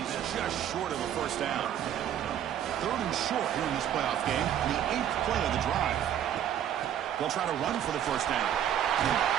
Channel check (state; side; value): quieter; left; 10.2 dB